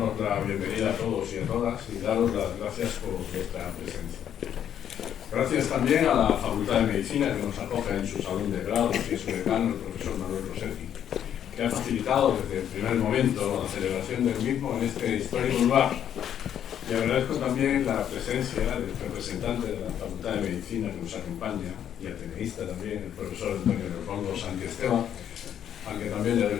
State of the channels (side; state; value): right; quieter; 9.7 dB